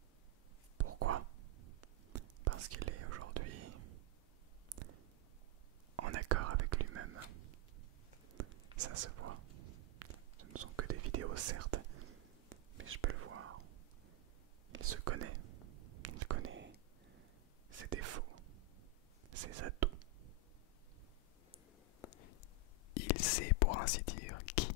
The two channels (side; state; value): both; normal; correlation 0.02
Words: Pourquoi ? Parce qu'il est aujourd'hui en accord avec lui-même. Ça se voit. Ce ne sont que des vidéos certes, mais je peux le voir. Il se connaît. Il connaît ses défauts, ses atouts. Il sait pour ainsi dire qui